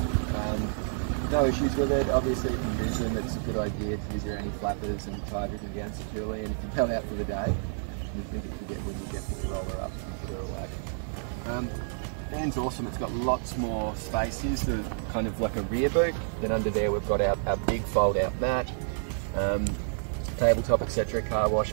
No issues with it. Obviously, if you use them, it's a good idea to use your anti-flappers and tie everything down securely. And if you go out for the day, you think it could get windy, definitely roll her up and put her away. Van's awesome. It's got lots more space here, so kind of like a rear boot. Then under there, we've got our big fold-out mat, tabletop, etc., car wash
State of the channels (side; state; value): left; silent; digital silence